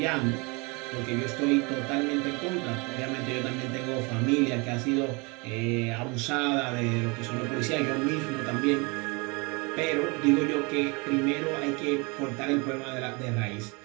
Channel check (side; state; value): left; quieter; 28.9 dB